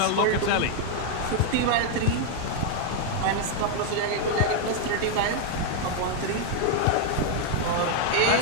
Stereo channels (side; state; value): both; different; correlation 0.00